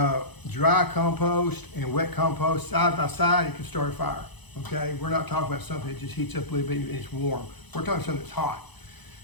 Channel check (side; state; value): right; late; 0.99 ms